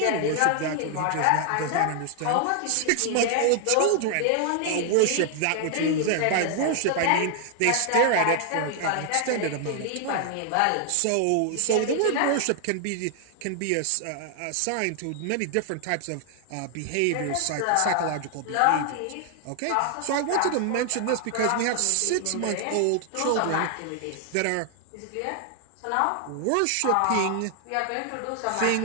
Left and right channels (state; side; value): different; both; correlation 0.00